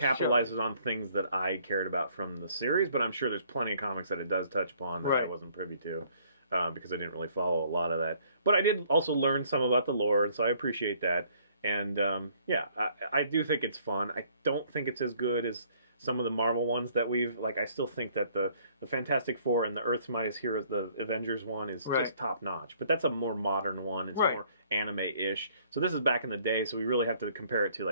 on things that I cared about from the series, but I'm sure there's plenty of comics that it does touch upon that I wasn't privy to, because I didn't really follow a lot of that. But I did also learn some about the lore, so I appreciate that. And yeah, I do think it's fun. I don't think it's as good as some of the Marvel ones that we've, like, I still think that the Fantastic Four and the Earth's Mightiest Heroes, the Avengers one, is just top-notch. But that's a more modern one. It's more anime-ish. So this is back in the day, so we really have to compare it to,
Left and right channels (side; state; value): both; inverted; correlation -0.62